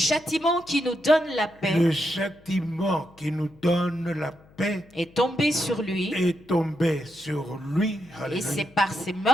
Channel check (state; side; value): noise; left; hum, 27 dB below the sound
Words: qui nous donne la paix. Le châtiment qui nous donne la paix. Est tombé sur lui. Est tombé sur lui. Et c'est par ses